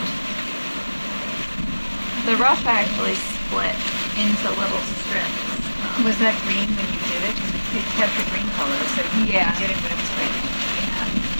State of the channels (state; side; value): inverted; both; correlation -1.00